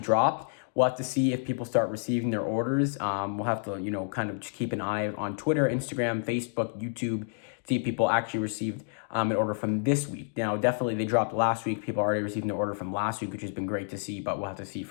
dropped. We'll have to see if people start receiving their orders. We'll have to, you know, kind of just keep an eye on Twitter, Instagram, Facebook, YouTube, see if people actually received an order from this week. Now, definitely they dropped last week. People already received their order from last week, which has been great to see, but we'll have to see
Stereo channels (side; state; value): right; silent; 58 dB below the other